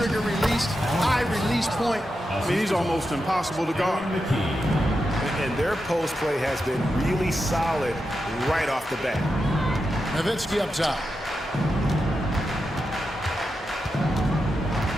release, high release point, I mean, he's almost impossible to guard. And their post play has been really solid right off the bat. Nowitzki up top.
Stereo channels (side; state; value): both; normal; correlation 0.88